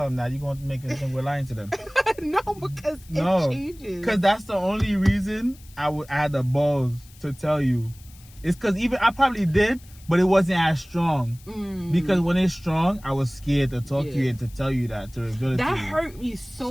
them that. You're gonna make it think we're lying to them. No, because it changes. Because that's the only reason I had the balls to tell you. It's because even I probably did. But it wasn't as strong. Because when it's strong, I was scared to talk to you and to tell you that, to reveal it to you. That hurt me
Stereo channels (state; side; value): noise; left; hiss, 24 dB below the sound